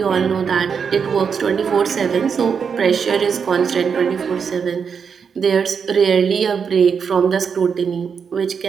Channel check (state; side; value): quieter; left; 6.4 dB